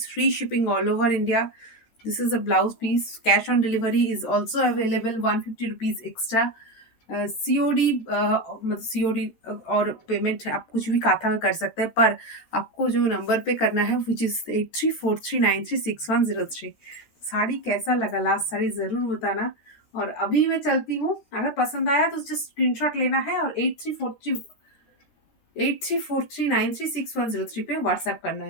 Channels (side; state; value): right; late; 13 ms